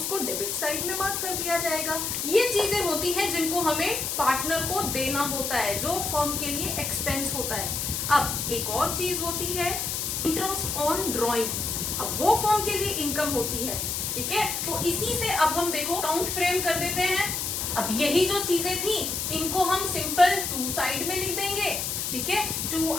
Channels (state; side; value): noise; left; hiss, 2 dB below the sound